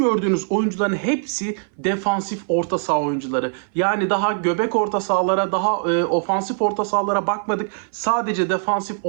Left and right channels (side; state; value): left; silent; 60 dB below the other